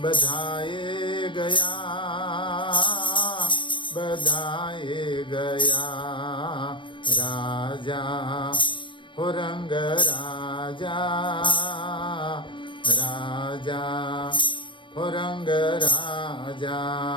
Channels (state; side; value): late; right; 0.24 ms